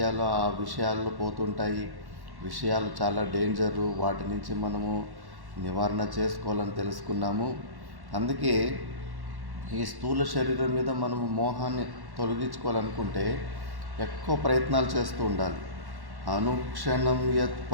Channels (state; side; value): late; left; 1.1 ms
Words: ఆ విషయాల్లో పోతుంటాయి. విషయాలు చాలా డేంజరు, వాటి నుంచి మనము నివారణ చేసుకోవాలని తెలుసుకున్నాము. అందుకే ఈ స్థూల శరీరం మీద మనము మోహాన్ని తొలగించుకోవాలనుకుంటే ఎక్కువ ప్రయత్నాలు చేస్తూ ఉండాలి. అనుక్షణం యత్